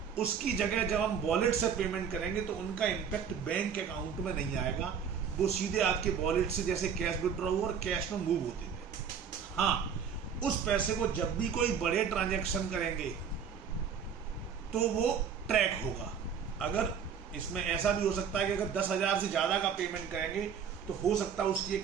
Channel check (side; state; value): left; quieter; 7.1 dB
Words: उसकी जगह जब हम वॉलेट से पेमेंट करेंगे तो उनका इम्पैक्ट बैंक अकाउंट में नहीं आएगा, वो सीधे आपके वॉलेट से जैसे कैश विड्रॉ हो और कैश में मूव होते थे। हाँ, उस पैसे को जब भी कोई बड़े ट्रांजैक्शन करेंगे तो वो ट्रैक होगा। अगर इसमें ऐसा भी हो सकता है कि अगर 10,000 से ज़्यादा का पेमेंट करेंगे तो हो सकता है उसकी एक